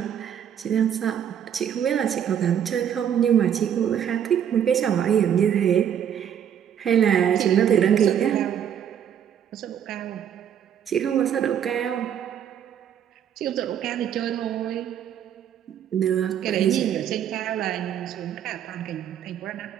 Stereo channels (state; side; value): quieter; left; 9.2 dB